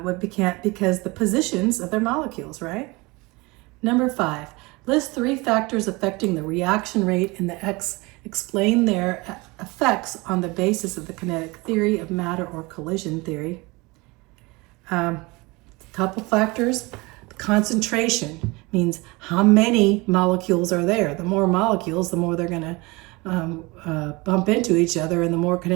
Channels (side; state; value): left; quieter; 24.4 dB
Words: because the positions of their molecules, right? Number 5. List 3 factors affecting the reaction rate and explain their effects on the basis of the kinetic theory of matter or collision theory. Couple factors. Concentration means how many molecules are there. The more molecules, the more they're going to bump into each other, and the more